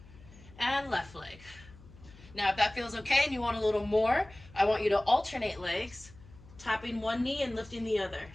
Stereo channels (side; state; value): left; noise; hum, 21 dB below the sound